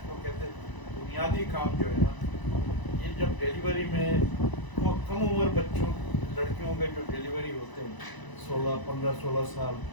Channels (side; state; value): right; late; 1.0 ms